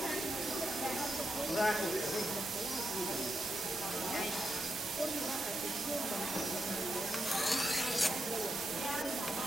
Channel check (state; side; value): normal; both; correlation 0.84